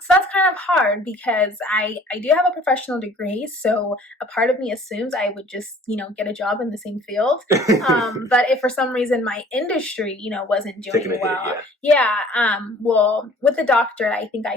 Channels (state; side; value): normal; both; correlation 0.52